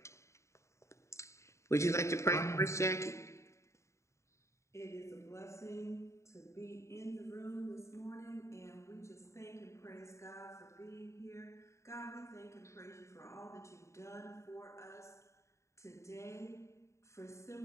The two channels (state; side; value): late; right; 0.14 ms